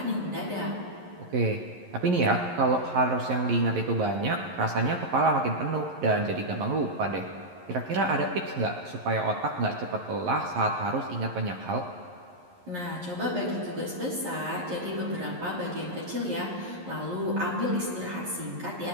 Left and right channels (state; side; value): late; left; 11 ms